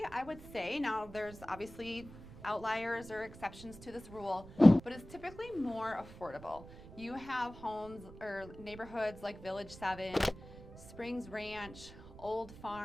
I would say, now there's obviously outliers or exceptions to this rule, but it's typically more affordable. You have homes or neighborhoods like Village 7, Springs Ranch, Old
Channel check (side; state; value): right; noise; rumble, 17 dB below the sound